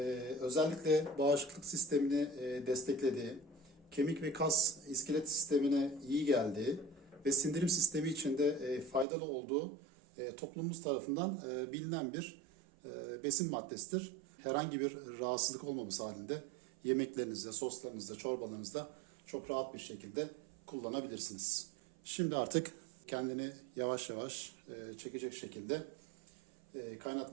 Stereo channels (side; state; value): left; drops out; at 9.1 s